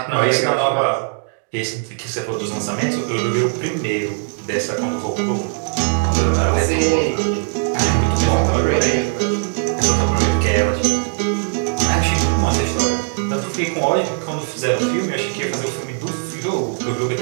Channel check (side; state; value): left; silent; digital silence